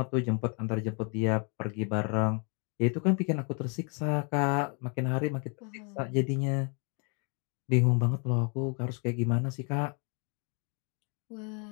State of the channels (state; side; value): quieter; right; 36.8 dB